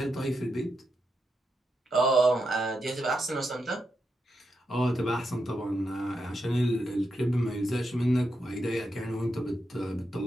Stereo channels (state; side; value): normal; both; correlation 0.85